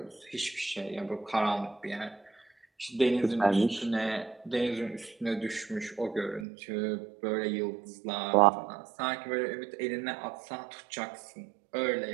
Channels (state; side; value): drops out; left; at 6.5 s